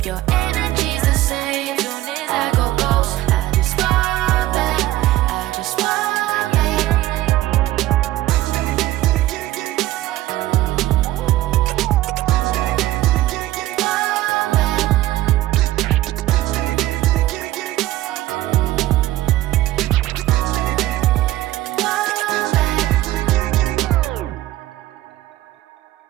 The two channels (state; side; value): quieter; left; 15.4 dB